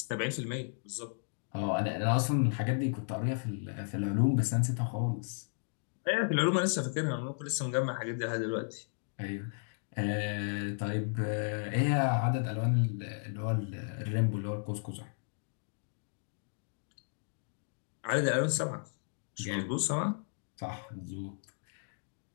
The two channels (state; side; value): silent; right; digital silence